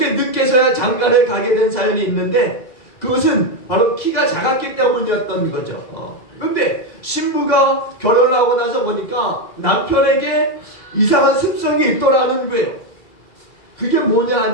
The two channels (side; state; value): right; late; 2.0 ms